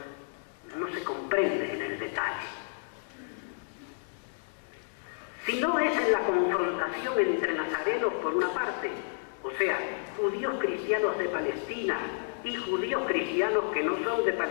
no se comprende en el detalle. Si no es en la confrontación entre nazarenos por una parte, o sea, judíos cristianos de Palestina y judíos cristianos que no son de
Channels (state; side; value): silent; right; digital silence